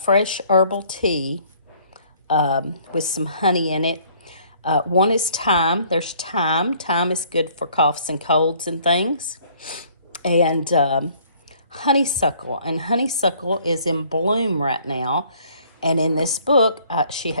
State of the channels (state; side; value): inverted; both; correlation -0.59